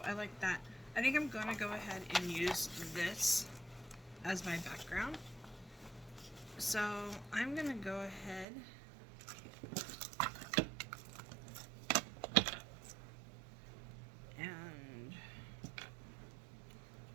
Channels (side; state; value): left; drops out; at 8.5 s